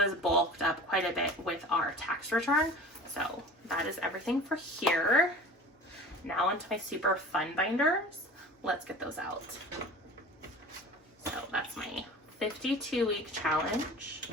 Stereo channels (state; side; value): normal; both; correlation 0.39